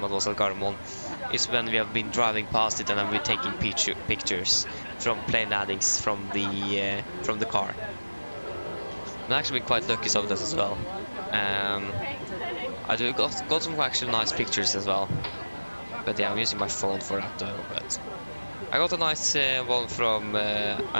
I was at Gardermoen, is when we have been driving past it and I've been taking pictures from plane landings from the car. I've actually been quite lucky some of this as well. I got some actually nice pictures as well. But yeah, I'm using my phone for that though. But I got a nice one from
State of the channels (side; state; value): both; inverted; correlation -1.00